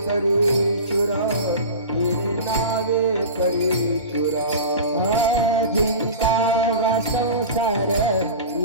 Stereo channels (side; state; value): both; inverted; correlation -0.31